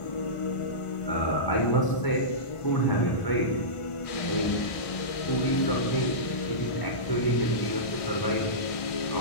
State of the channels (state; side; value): late; right; 1.4 ms